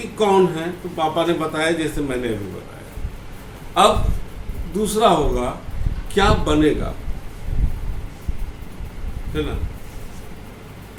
कौन है, तो पापा ने बताया जैसे मैंने अभी बताया। अब दूसरा होगा क्या बनेगा, है ना।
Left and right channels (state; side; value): identical; both; correlation 1.00